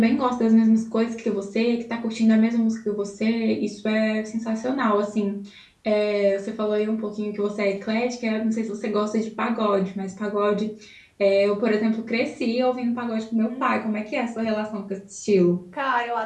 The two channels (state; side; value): identical; both; correlation 1.00